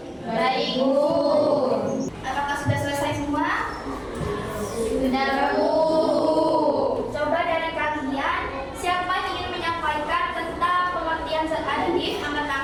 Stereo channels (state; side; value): identical; both; correlation 1.00